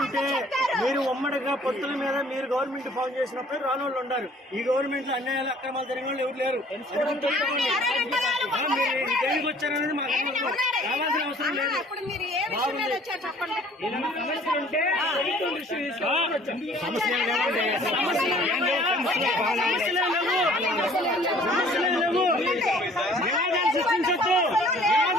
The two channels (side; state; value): both; normal; correlation 0.54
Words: మీరు ఉమ్మడిగా పొత్తుల మీద మీరు గవర్నమెంట్ ఫామ్ చేసినప్పుడు రాని వాళ్ళు ఉన్నారు. ఈ గవర్నమెంట్ లో అన్యాయాలు అక్రమాలు జరిగిన వాళ్ళు ఎవరు లేరు. దేనికి వచ్చారనేది మాకు రావాల్సిన అవసరం లేదు.